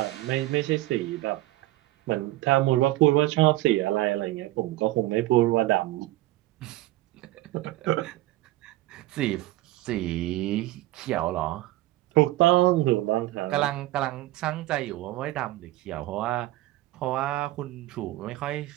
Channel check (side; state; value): left; quieter; 17.2 dB